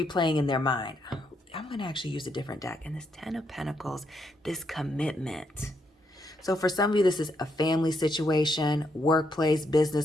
in their mind. I'm going to actually use a different deck. And this Ten of Pentacles, this commitment. So for some of you, this is a family situation, workplace,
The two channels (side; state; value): both; normal; correlation 0.78